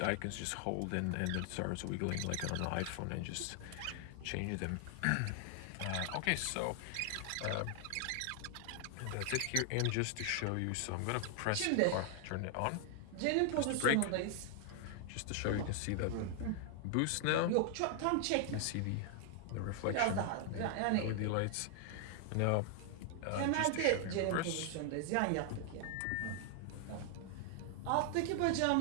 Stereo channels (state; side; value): different; both; correlation 0.00